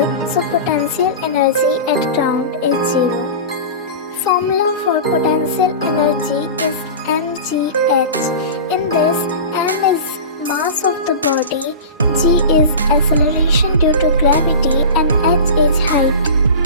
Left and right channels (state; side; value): inverted; both; correlation -0.30